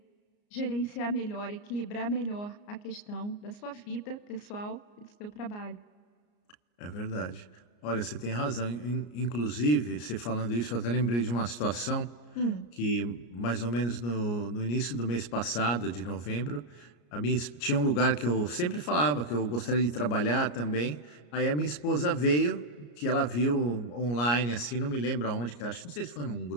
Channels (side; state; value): right; late; 34 ms